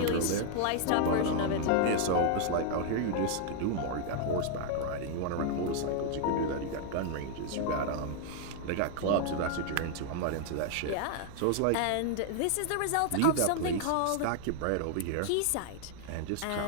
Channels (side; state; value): both; different; correlation 0.00